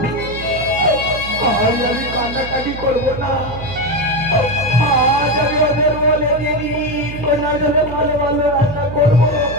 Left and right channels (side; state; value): right; noise; hum, 11 dB below the sound